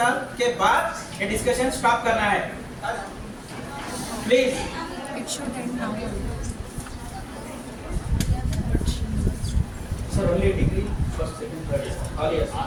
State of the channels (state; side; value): identical; both; correlation 1.00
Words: के बाद ये डिस्कशन स्टॉप करना है? Please. It should end now. Sir only degree first second third all yes.